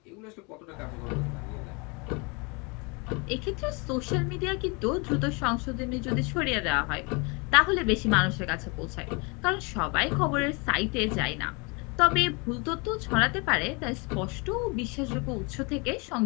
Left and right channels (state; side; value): quieter; right; 30.1 dB